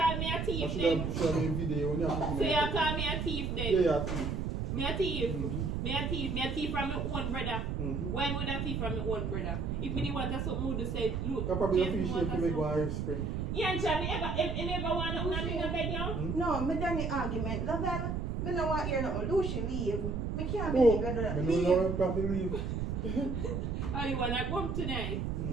me a I thief should then. have shot a video when you have to So you call me a thief then. Yeah, yeah, thief. Me a thief. Mhm. Me a thief from my own brother. Mhm. Why would I thief from my own brother? If me want to something would say, look, I probably Jason appreciate want to to make something. one Irish spring. Yeah, and me ever want to in a bed now? No, me done the argument. Lavelle, me no want hear nothing. Lucy leave. Me can't Oh, believe you do that. I Leave. don't know if I can leave. Oh, you want to go home tonight?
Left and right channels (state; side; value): noise; right; rumble, 2 dB below the sound